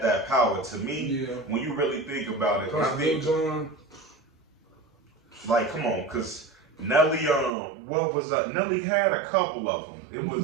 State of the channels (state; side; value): drops out; left; at 7.5 s